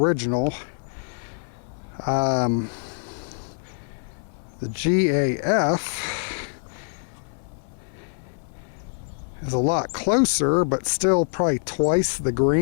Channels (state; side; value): silent; right; 56 dB below the other